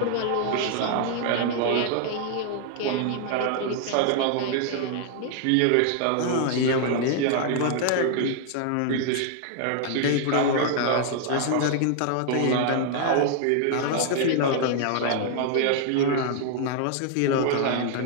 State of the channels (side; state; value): both; different; correlation 0.00